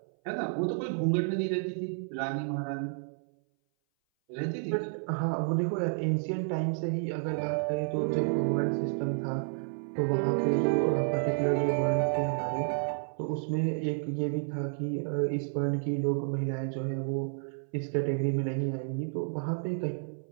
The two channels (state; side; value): silent; left; 57 dB below the other